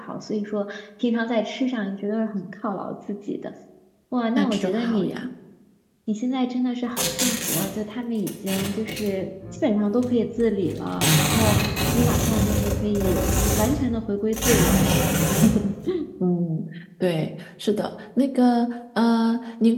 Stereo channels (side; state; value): both; identical; correlation 1.00